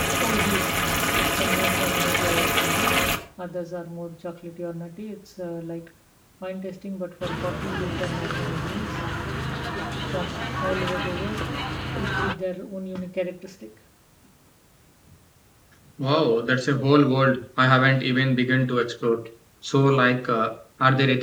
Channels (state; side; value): identical; both; correlation 1.00